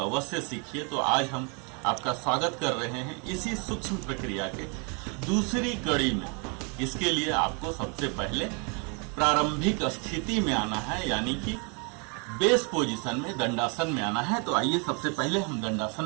सीखिए। तो आज हम आपका स्वागत कर रहे हैं इसी सूक्ष्म प्रक्रिया के दूसरी कड़ी में। इसके लिए आपको सबसे पहले प्रारंभिक स्थिति में आना है, यानी कि बेस पोजीशन में, दंडासन में आना है। तो आइए सबसे पहले हम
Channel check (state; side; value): quieter; left; 35.0 dB